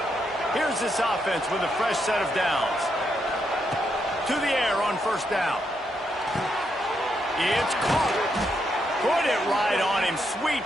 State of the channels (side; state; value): both; normal; correlation 0.80